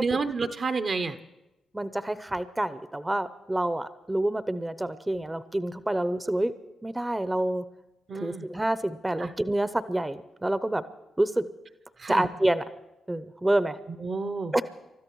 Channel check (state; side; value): normal; both; correlation 0.97